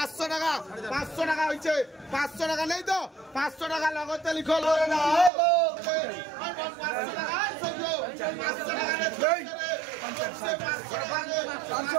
টাকা 500 টাকা হয়েছে 500 টাকা নেই তো 500 টাকা লগতে লিখো লয় না 500 টাকা 500 টাকা নেই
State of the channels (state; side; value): drops out; left; at 5.3 s